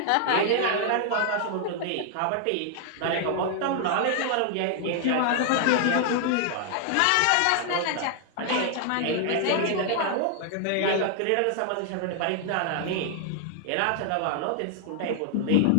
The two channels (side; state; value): both; different; correlation 0.00